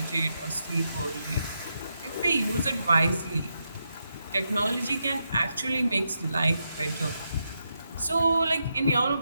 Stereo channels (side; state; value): both; inverted; correlation -0.83